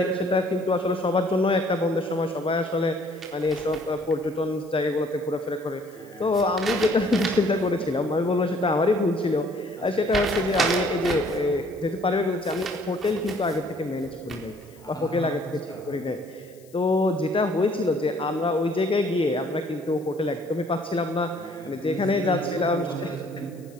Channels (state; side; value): noise; left; hiss, 28 dB below the sound